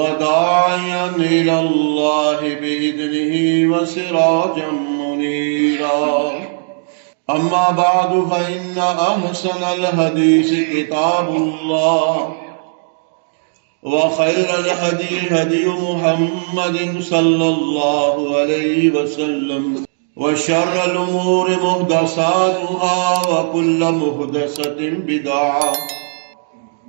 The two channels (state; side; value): silent; left; digital silence